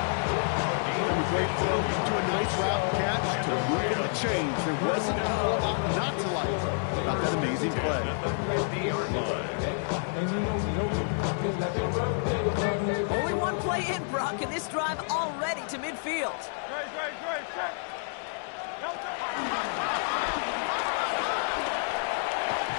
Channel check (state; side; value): silent; right; digital silence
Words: From a great throw to a nice route catch to moving the chains. There wasn't a whole lot not to like about that amazing play. Only one play in, Brock, and this drive already to midfield.